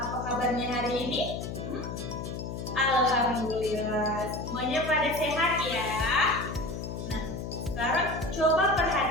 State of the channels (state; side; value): noise; left; hum, 6 dB below the sound